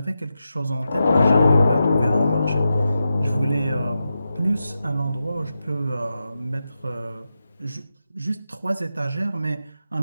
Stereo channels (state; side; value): inverted; both; correlation -0.89